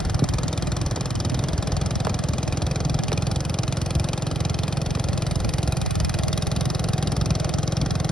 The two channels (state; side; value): normal; both; correlation 0.78